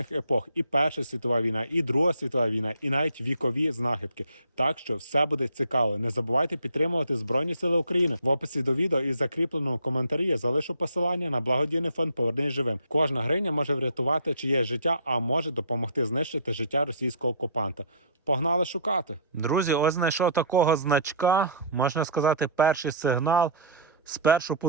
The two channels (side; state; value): both; inverted; correlation -0.47